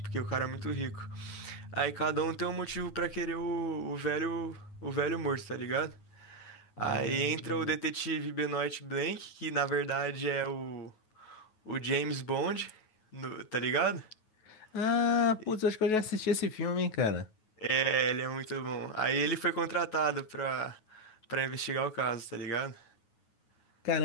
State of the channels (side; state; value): right; late; 9.4 ms